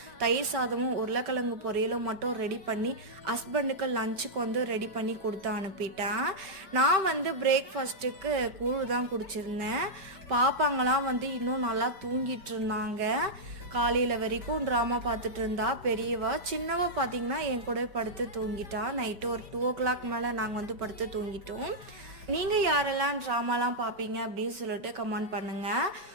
தயிர் சாதமும் உருளைக்கிழங்கு பொரியலும் மட்டும் ரெடி பண்ணி ஹஸ்பண்டுக்கு லஞ்சுக்கு வந்து ரெடி பண்ணி கொடுத்து அனுப்பிட்டேன். நான் வந்து பிரேக்ஃபாஸ்ட்டுக்கு கூழ் தான் குடிச்சிருந்தேன். பாப்பாங்களாம் வந்து இன்னும் நல்லா தூங்கிட்டு இருந்தாங்க. காலையில் வரைக்கும் ட்ராமா பார்த்துட்டு இருந்தா பெரியவா. சின்னவா பார்த்தீங்கன்னா என் கூட படுத்து தூங்கிட்டா. நைட்டு ஒரு 2 o'clock மேலே நாங்கள் வந்து படுத்து தூங்கிட்டோம். நீங்கள் யாரெல்லாம் ட்ராமாலாம் பார்ப்பீங்க அப்படின்னு சொல்லிட்டு கமெண்ட் பண்ணுங்கள்.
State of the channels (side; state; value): left; late; 5.1 ms